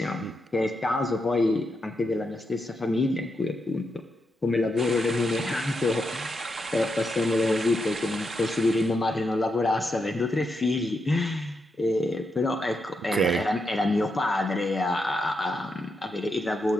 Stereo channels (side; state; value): both; normal; correlation 0.84